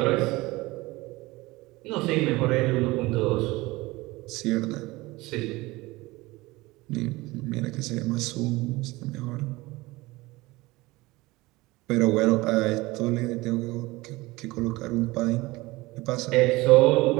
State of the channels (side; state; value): left; quieter; 20.9 dB